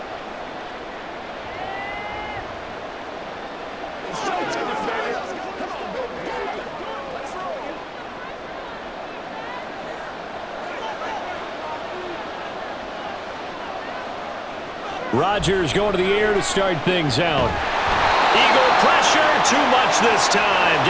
Rodgers going to the air to start things out. Eagle pressure, too much this time.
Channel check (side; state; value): both; identical; correlation 1.00